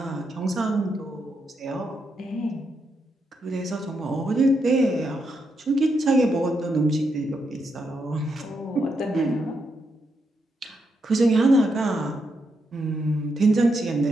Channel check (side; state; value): both; normal; correlation 0.82